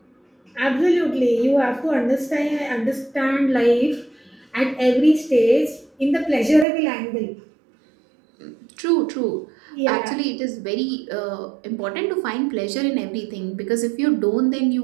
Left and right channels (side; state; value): left; drops out; at 6.7 s